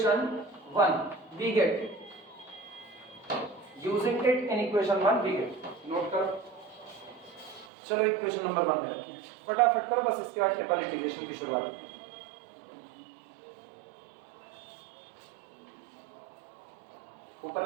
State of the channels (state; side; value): drops out; left; at 7.7 s